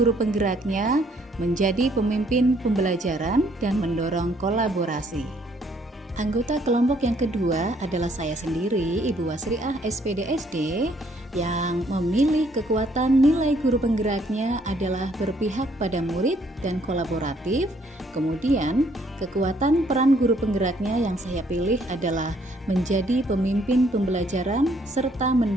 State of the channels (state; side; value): normal; both; correlation 0.66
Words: penggeraknya menjadi pemimpin pembelajaran dan mendorong kolaborasi. Anggota kelompok yang kedua adalah saya sendiri, Ibu Wasriah SPDSD, yang memilih kekuatan nilai guru penggeraknya adalah berpihak pada murid dan kolaboratif. Kemudian, kekuatan peran guru penggeraknya yang saya pilih adalah menjadi pemimpin pembelajaran serta